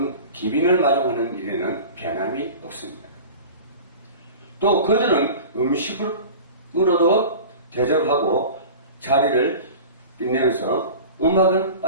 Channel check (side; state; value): both; inverted; correlation -0.37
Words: 마중하는 일에는 변함이 없습니다. 또 그들은 음식으로도 대접하고 자리를 빛내면서 음악은